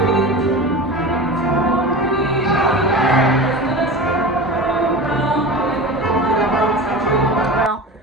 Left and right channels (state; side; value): normal; both; correlation 0.31